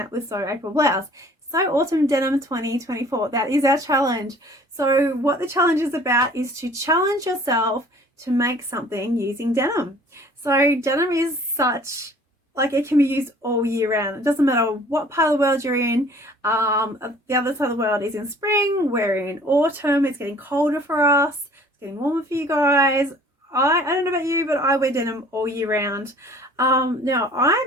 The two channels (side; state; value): both; normal; correlation 0.51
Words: with Sew April Blouse. Sew Autumn Denim 2024. That is our challenge. So what the challenge is about is to challenge yourself to make something using denim. So denim is such, like, it can be used all year round. It doesn't matter what part of the world you're in. The other side of the world is in spring. We're in autumn. It's getting colder for us. It's getting warmer for you guys. I don't know about you, but I wear denim all year round. Now